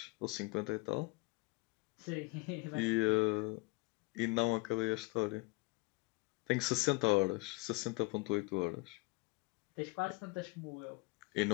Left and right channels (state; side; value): quieter; right; 25.3 dB